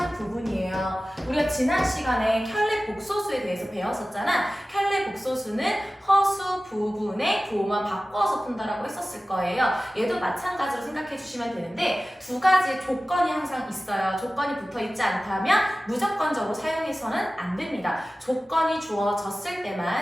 부분이에요. 우리가 지난 시간에 켤레 복소수에 대해서 배웠었잖아. 켤레 복소수는 허수 부분의 부호만 바꿔서 푼다라고 했었을 거예요. 얘도 마찬가지로 생각해 주시면 되는데 두 가지 조건이 항상 있어요. 조건이 붙어 있지 않다면 무조건적으로 사용해서는 안 됩니다. 조건이 주어졌을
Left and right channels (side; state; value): both; normal; correlation 0.96